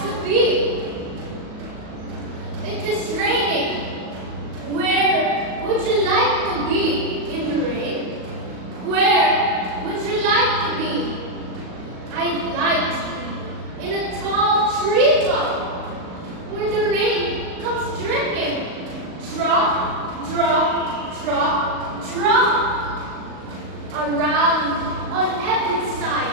to be. It is raining. Where would you like to be in the rain? Where would you like to be? I'd like to be in a tall treetop where the rain comes dripping. Drop, drop, drop, drop. Around on every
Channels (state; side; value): late; left; 38 ms